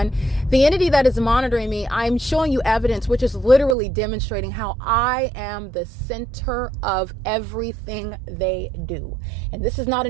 the entity that is monitoring me, I'm showing you evidence which is literally demonstrating how I am the center of everything they do. And this is not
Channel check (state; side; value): drops out; left; at 3.8 s